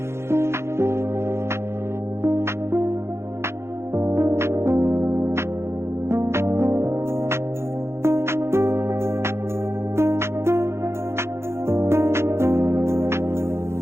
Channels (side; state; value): left; late; 0.13 ms